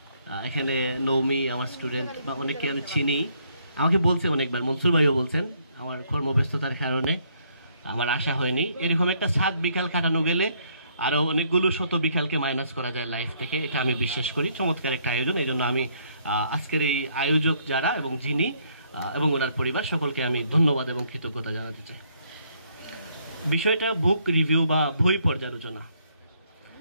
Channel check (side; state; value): both; inverted; correlation -0.69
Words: এখানে নৌমি আমার স্টুডেন্ট বা অনেকে আমি চিনি, আমাকে বলছে অনেকবার, মনসুর ভাইও বলছেন, আমার কর্মব্যস্ততার কারণে আমার আশা হয়নি। এরকম একটা 7 বিকাল কাটানো গেলে আরো অনেকগুলো শত বিকালকে মাইনাস করা যায় লাইফ থেকে, এটা আমি বিশ্বাস করি। চমৎকার একটা আয়োজন, এই জন্য আমি আজকের এই আয়োজক যারা এবং যিনি এবং ওনার পরিবার সকলকে আমি ধন্যবাদ এবং কৃতজ্ঞতা জানাতে চাই। বিষয়টা বুক রিভিউ বা বই পর্যালোচনা।